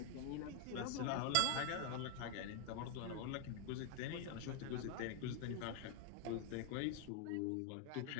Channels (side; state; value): both; different; correlation 0.00